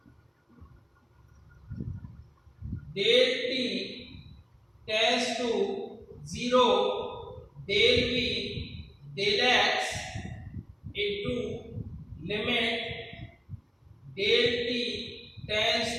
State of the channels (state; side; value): identical; both; correlation 1.00